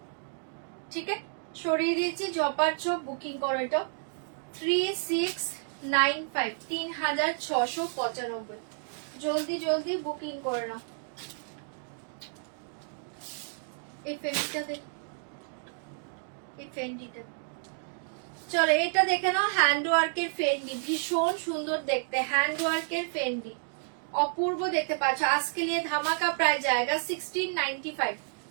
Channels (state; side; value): silent; left; digital silence